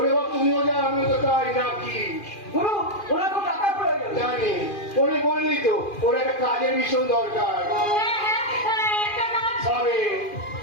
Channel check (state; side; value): late; right; 2.4 ms